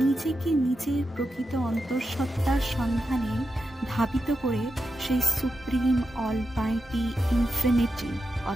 নিজের প্রকৃত অন্তঃসত্ত্বার সন্ধানে ধাবিত করে সেই সুপ্রিম, অলমাইটি, ইনফিনিটি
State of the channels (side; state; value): both; normal; correlation 0.89